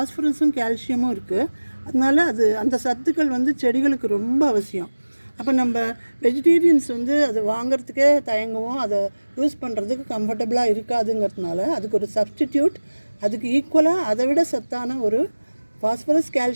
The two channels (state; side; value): inverted; both; correlation -1.00